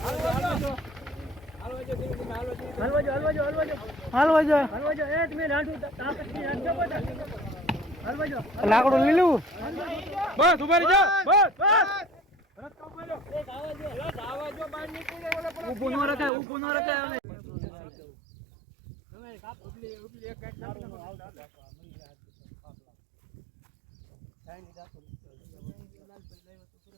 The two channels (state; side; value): drops out; left; at 16.3 s